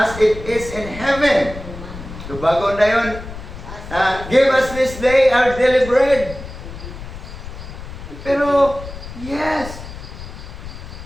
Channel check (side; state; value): left; noise; rumble, 12 dB below the sound